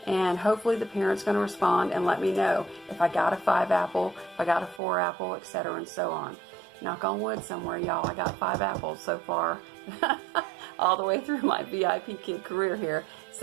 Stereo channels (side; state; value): left; drops out; at 4.8 s